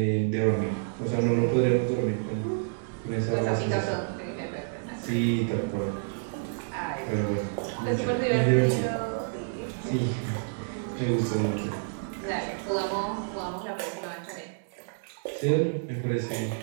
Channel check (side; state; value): left; silent; digital silence